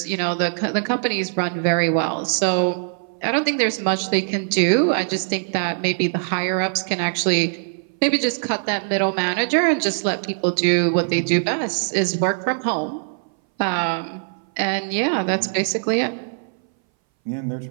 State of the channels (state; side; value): silent; left; 61 dB below the other